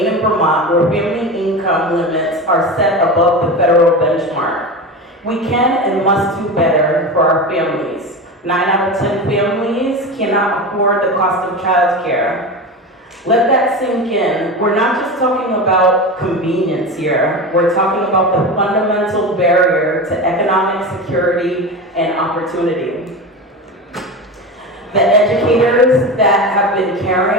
and Vermont, where family income limits are set above the federal benchmark. We can and must do better for our families. 9 out of 10 families cannot afford the cost of child care. Let that sink in. We're not just talking about convenience here. We're talking about the fundamental barrier to economic security and opportunity. The educators that have been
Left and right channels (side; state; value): both; normal; correlation 0.25